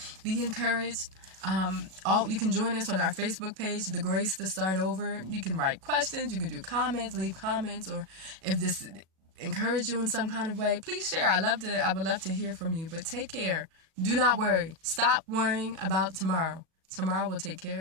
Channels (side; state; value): left; late; 37 ms